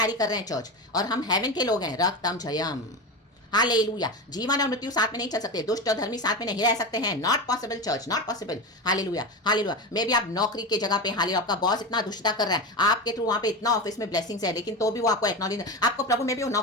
कर रहे हैं चर्च, और हम हेवन के लोग हैं। रक्तम जयम। हालेलुया। जीवन और मृत्यु साथ में नहीं चल सकते, दुष्ट और धर्मी साथ में नहीं रह सकते हैं। Not possible church, not possible. Hallelujah hallelujah. मे भी आप नौकरी की जगह पे, हालेलुया, आपका बॉस इतना दुष्टता कर रहा है, आपके थ्रू वहां पे इतना ऑफिस में ब्लेसिंग्स है, लेकिन तो भी वो आपको एक्नॉलेज, आपको प्रभु में भी वो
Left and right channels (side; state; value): both; normal; correlation 0.21